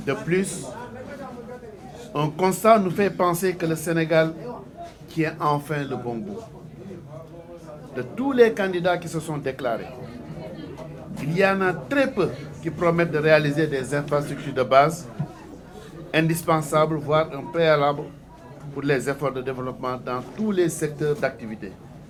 De plus, un constat nous fait penser que le Sénégal tient enfin le bon bout. De tous les candidats qui se sont déclarés, il y en a très peu qui promettent de réaliser des infrastructures de base indispensables, voire un préalable pour les efforts de développement dans tous les secteurs d'activité,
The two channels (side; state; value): both; identical; correlation 1.00